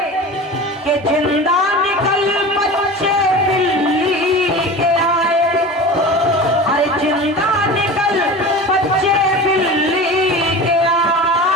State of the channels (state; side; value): normal; both; correlation 0.33